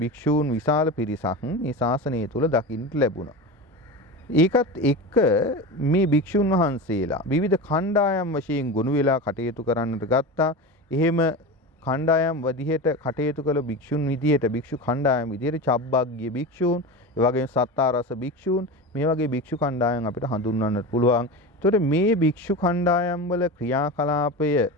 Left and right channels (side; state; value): both; normal; correlation 0.26